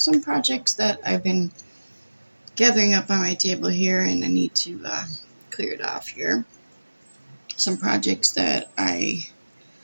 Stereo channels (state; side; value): inverted; both; correlation -1.00